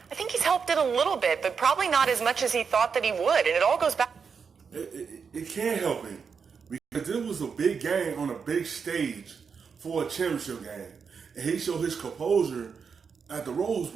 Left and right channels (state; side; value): quieter; left; 6.0 dB